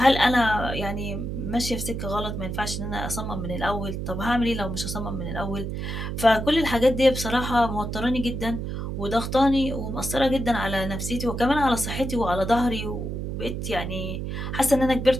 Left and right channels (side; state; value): right; noise; hum, 4 dB below the sound